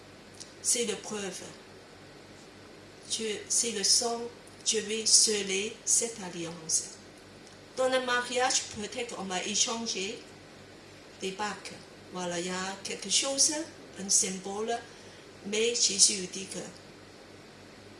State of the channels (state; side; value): identical; both; correlation 1.00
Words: c'est la preuve. C'est le sang, je vais sceller cette alliance. Dans le mariage, peut-être on va échanger des bacs. Voilà, il y a quelque chose, un symbole, mais Jésus dit que